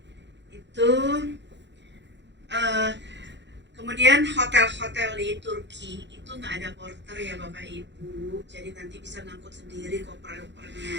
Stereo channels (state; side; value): late; left; 0.52 ms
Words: Itu kemudian hotel-hotel di Turki itu nggak ada porter ya Bapak Ibu, jadi nanti bisa ngangkut sendiri